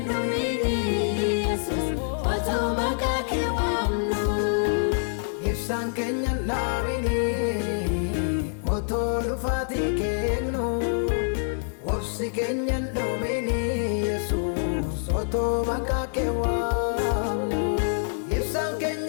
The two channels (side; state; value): right; silent; 61 dB below the other